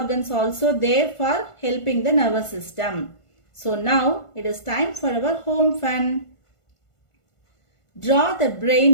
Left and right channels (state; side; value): late; right; 1.5 ms